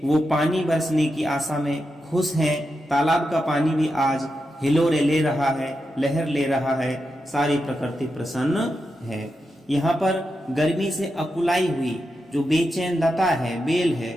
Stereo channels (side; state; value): both; normal; correlation 0.87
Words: वो पानी बरसने की आशा में खुश हैं। तालाब का पानी भी आज हिलोरे ले रहा है, लहर ले रहा है। सारी प्रकृति प्रसन्न है। यहाँ पर गर्मी से अकुलाई हुई जो बेचैन लता है, बेल है,